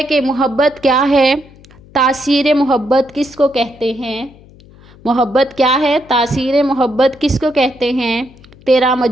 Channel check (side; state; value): left; noise; hum, 24 dB below the sound